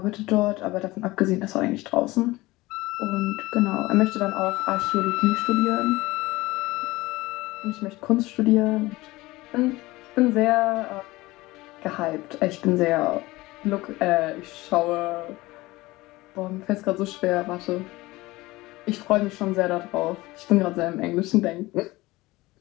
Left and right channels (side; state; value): right; quieter; 19.9 dB